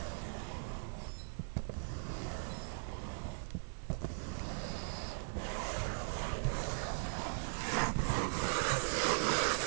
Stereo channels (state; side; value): silent; left; digital silence